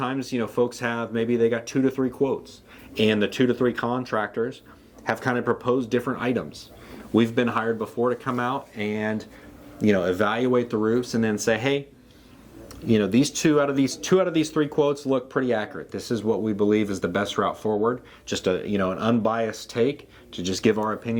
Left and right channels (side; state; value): both; identical; correlation 1.00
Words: folks maybe they got 2 to 3 quotes, and the 2 to 3 contractors have kind of proposed different items. We've been hired before to come out and evaluate the roofs and then say, hey, these two out of these 3 quotes look pretty accurate. This is what we believe is the best route forward. Just an unbiased take to just give our